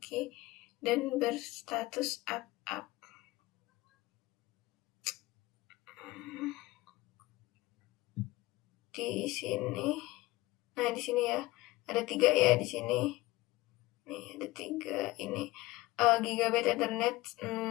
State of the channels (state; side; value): quieter; right; 19.6 dB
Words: dan berstatus up? Di sini, nah di sini ya ada 3 ya di sini. Nih ada 3 ini. Gigabyte Ethernet